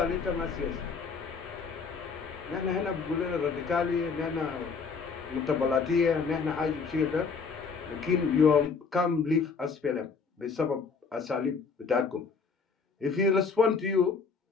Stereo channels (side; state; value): right; quieter; 5.2 dB